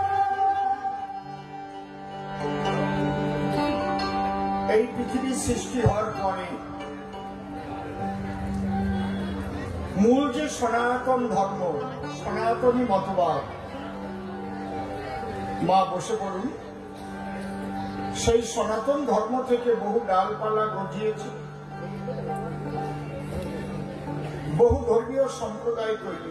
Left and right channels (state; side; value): identical; both; correlation 1.00